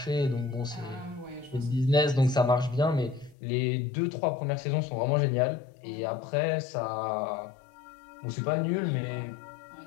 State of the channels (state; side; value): drops out; right; at 3.4 s